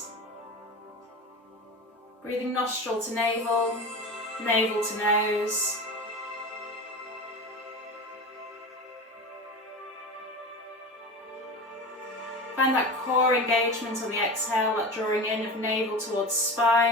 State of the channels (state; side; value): normal; both; correlation 0.28